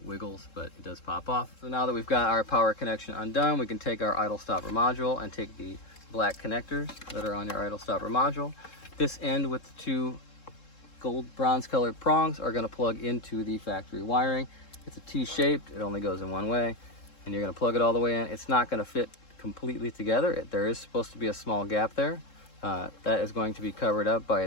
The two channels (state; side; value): late; right; 3.7 ms